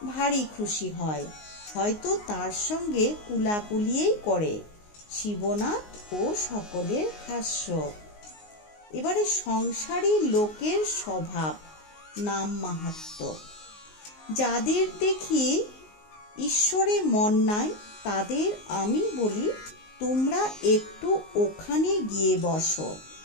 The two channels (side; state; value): right; late; 19 ms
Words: ভারী খুশি হয়, হয়তো তার সঙ্গে কুলাকুলিয়েই করে। শিবনাথ ও সকলের হাস্য। এবারে সংসারী লোকের স্বভাব, নাম মাহাত্ম্য। যাদের দেখি ঈশ্বরে মন নাই, তাদের আমি বলি, তোমরা একটু ওখানে গিয়ে বসো,